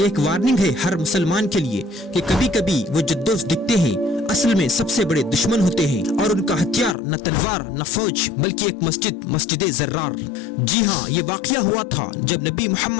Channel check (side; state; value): right; drops out; at 7.0 s